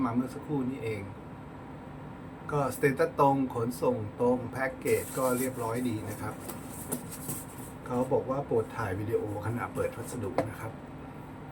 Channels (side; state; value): both; identical; correlation 1.00